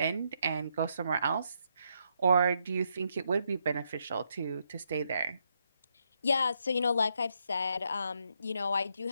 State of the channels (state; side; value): inverted; both; correlation -0.78